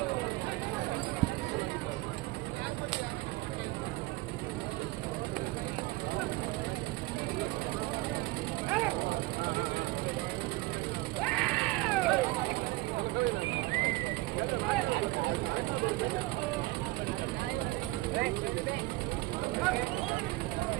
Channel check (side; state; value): left; quieter; 20.4 dB